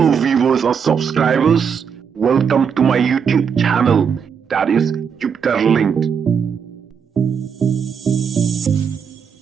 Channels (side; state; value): left; quieter; 6.8 dB